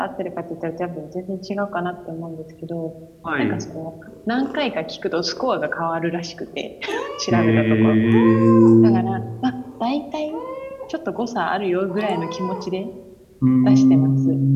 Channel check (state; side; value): identical; both; correlation 1.00